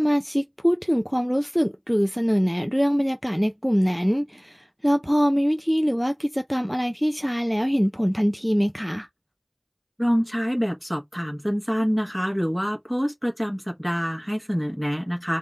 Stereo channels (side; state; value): both; identical; correlation 1.00